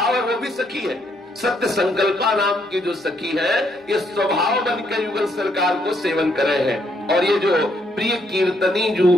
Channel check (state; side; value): normal; both; correlation 0.73